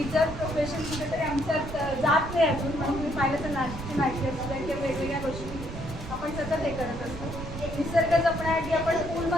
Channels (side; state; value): right; noise; rumble, 9 dB below the sound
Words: प्रोफेशन कुठेतरी आमच्यात जात नाही अजून, म्हणून तुम्ही पाहिलं तर नाचची माहिती असू द्या किंवा वेगवेगळ्या गोष्टी आपण सतत हे करत असतो. निसर्ग जपण्यासाठी आपण